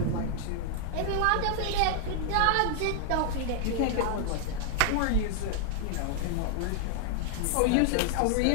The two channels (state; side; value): different; both; correlation 0.00